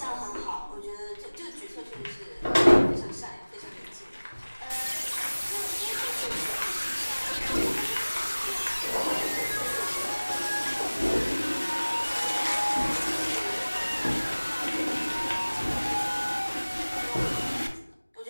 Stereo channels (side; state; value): both; inverted; correlation -1.00